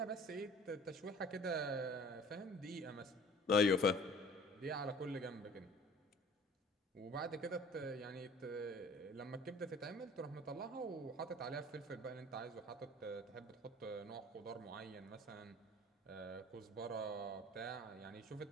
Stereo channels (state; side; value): normal; both; correlation 0.48